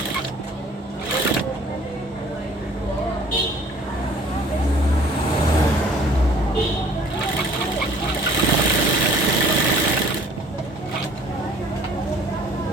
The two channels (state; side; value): normal; both; correlation 0.53